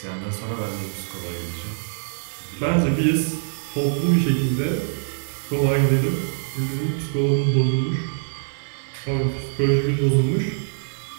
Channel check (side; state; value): left; silent; digital silence